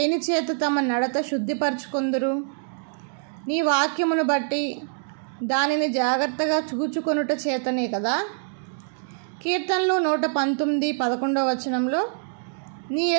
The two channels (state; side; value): silent; left; digital silence